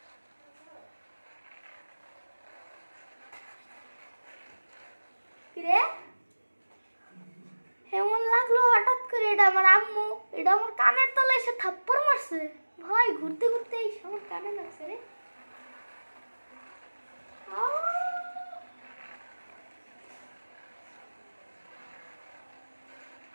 কিরে, এমন লাগলো হঠাৎ করে, এটা আমার আম্মু, এটা আমার কানের তলায় এসে থাপ্পড় মারছে। ভাই ঘুরতে ঘুরতে এই আমার কানে লাগছে রে।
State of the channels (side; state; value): both; inverted; correlation -1.00